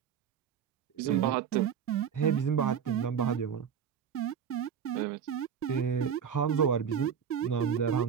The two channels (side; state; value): left; quieter; 7.8 dB